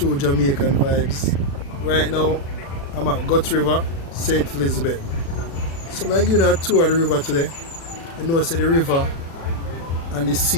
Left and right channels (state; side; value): late; right; 36 ms